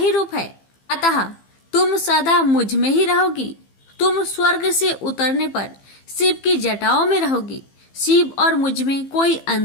रूप है, अतः तुम सदा मुझ में ही रहोगी। तुम स्वर्ग से उतरने पर शिव की जटाओं में रहोगी। शिव और मुझ में कोई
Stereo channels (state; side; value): late; right; 15 ms